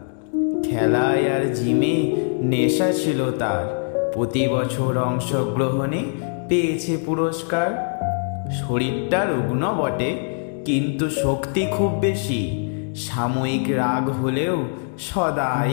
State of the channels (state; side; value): silent; right; digital silence